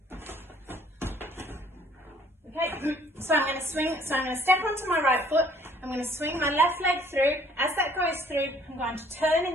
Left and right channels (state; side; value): normal; both; correlation 0.59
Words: Okay, so I'm going to swing. So I'm going to step onto my right foot. I'm going to swing my left leg through. As that goes through, I'm going to turn in